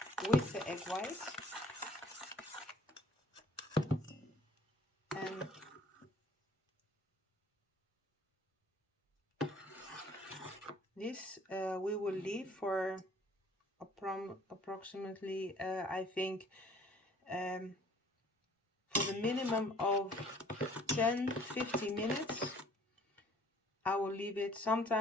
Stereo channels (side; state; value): both; normal; correlation 0.54